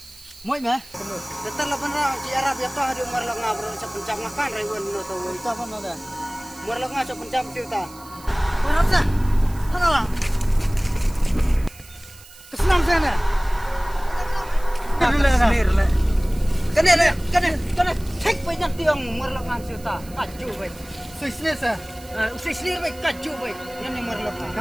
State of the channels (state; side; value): noise; right; hiss, 21 dB below the sound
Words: Moi mah. Betul lah benar. Di Arab ya toh ada umar lengah berusaha pencap makan ribuan no tahu. Itu apa nada? Umar lengah cak pencap cerita. Mana sah? Mana lah? Kesenam sana. Kena. Cek banyak tiang umar lengah cerita. Kacau baik. Sisir sah. Sisir baik kacau baik. Yang umar